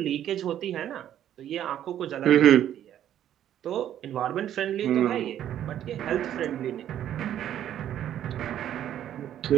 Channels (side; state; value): left; quieter; 11.0 dB